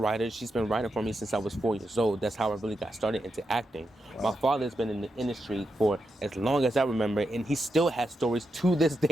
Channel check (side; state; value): both; normal; correlation 0.86